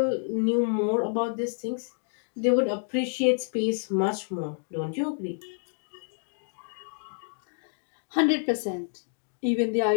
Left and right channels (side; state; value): right; silent; digital silence